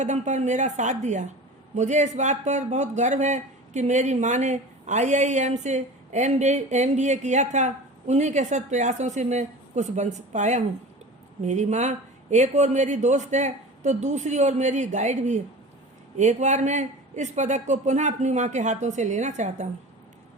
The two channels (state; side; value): normal; both; correlation 0.35